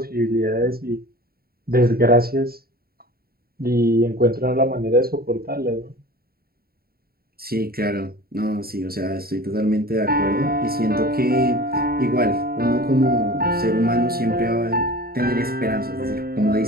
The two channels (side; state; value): left; late; 0.44 ms